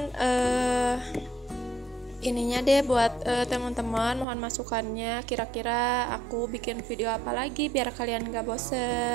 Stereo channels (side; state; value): left; drops out; at 4.2 s